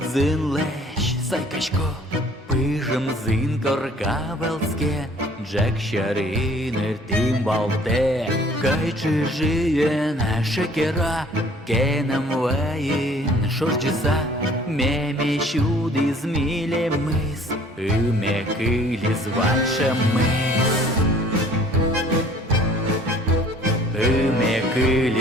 зин лещ сайкашко, пижем зин коркавелске, Джек шаринер тим балте, кайчи жиен шекера, кенем ваин шорджиса, меме щуди зміле мис, име килі званша мис. Име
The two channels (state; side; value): normal; both; correlation 0.54